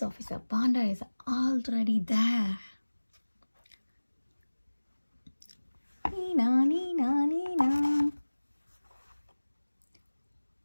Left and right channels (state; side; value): inverted; both; correlation -1.00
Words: officer Panda is already there. Nina, Nina, Nina.